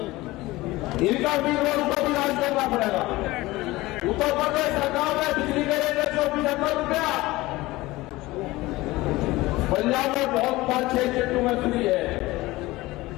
इनका भी रोड को भी राज करना पड़ेगा। उत्तर प्रदेश सरकार ने बिजली के रेट 175 रुपया, पंजाब में बहुत 5-6 चट्टू में फ्री है।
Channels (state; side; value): quieter; right; 19.5 dB